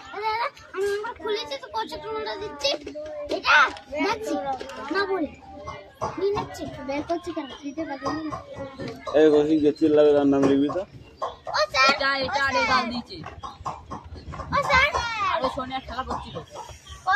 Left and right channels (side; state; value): both; identical; correlation 1.00